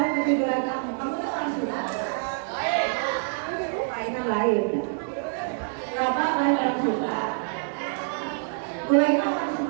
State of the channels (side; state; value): left; silent; digital silence